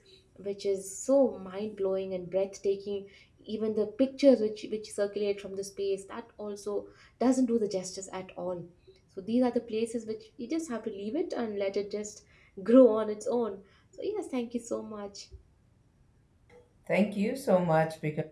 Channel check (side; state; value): both; identical; correlation 1.00